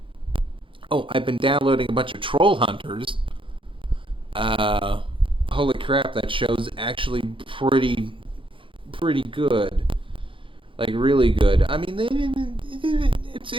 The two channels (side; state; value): left; late; 0.25 ms